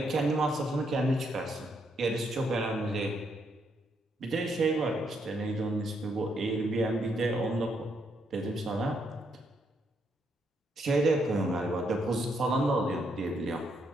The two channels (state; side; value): normal; both; correlation 0.76